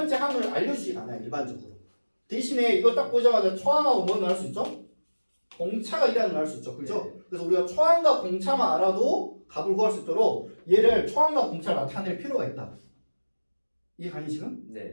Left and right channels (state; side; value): inverted; both; correlation -1.00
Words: 항을 알려주지 않아요. 일반적으로. 대신에 이거 딱 보자마자 초항하고 뭐 나올 수 있죠? 공차가 1이라는 걸 알 수 있죠. 그죠? 네. 그래서 우리가 초항과 공차만 알아도 값을 구할 수 있도록 얘를 초항과 공차를 나타낼 필요가 있다. 이해가니 지금?